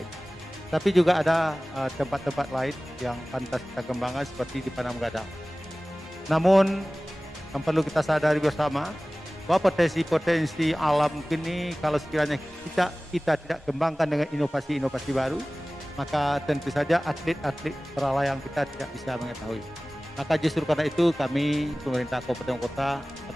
Tapi juga ada tempat-tempat lain yang pantas kita kembangkan seperti di Panam Gadang. Namun yang perlu kita sadari bersama bahwa potensi-potensi alam ini kalau sekiranya kita tidak kembangkan dengan inovasi-inovasi baru, maka tentu saja atlet-atlet paralayang kita tidak bisa mengetahui. Maka justru karena itu kami pemerintah Kabupaten Kota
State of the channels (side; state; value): both; normal; correlation 0.98